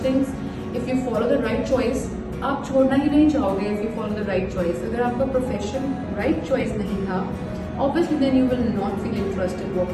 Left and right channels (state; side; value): identical; both; correlation 1.00